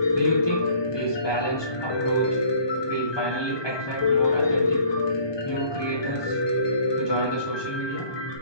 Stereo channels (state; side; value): late; right; 1.2 ms